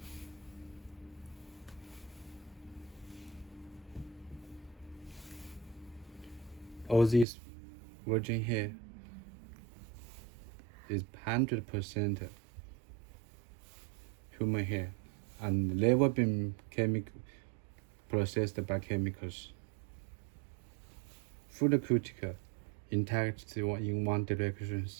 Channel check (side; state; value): left; drops out; at 7.2 s